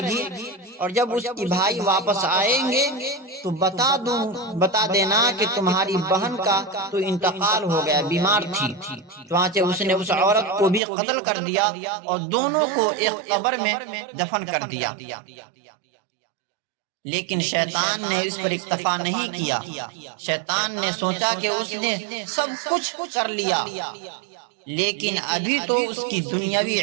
گی، اور جب اس کی بھائی واپس آئیں گے تو بتا دینا کہ تمہاری بہن کا تو انتقال ہو گیا، بیمار تھی۔ چنانچہ اس نے اس عورت کو بھی قتل کر دیا اور دونوں کو ایک قبر میں دفن کر دیا۔ لیکن شیطان نے اس پر اکتفا نہیں کیا۔ شیطان نے سوچا کہ اس نے سب کچھ کر لیا، لیکن ابھی تو اس کی دنیاوی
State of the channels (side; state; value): left; drops out; at 10.8 s